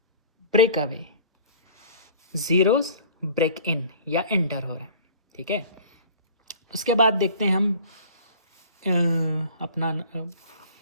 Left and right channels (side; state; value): both; inverted; correlation -0.45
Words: break away, zeros break in या एंटर हो रहा है, ठीक है। उसके बाद देखते हैं हम अपना